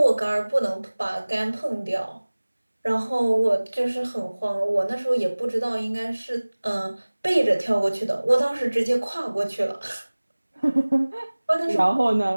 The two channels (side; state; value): both; inverted; correlation -1.00